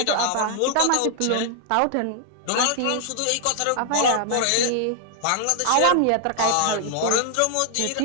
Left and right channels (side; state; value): both; different; correlation 0.00